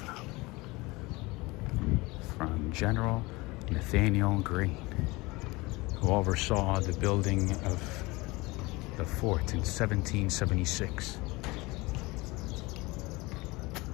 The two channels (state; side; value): quieter; right; 22.9 dB